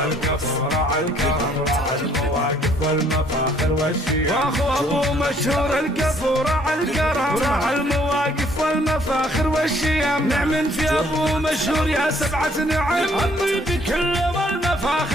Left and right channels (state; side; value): normal; both; correlation 0.63